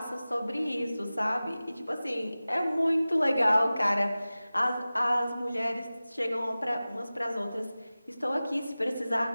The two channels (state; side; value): inverted; both; correlation -0.97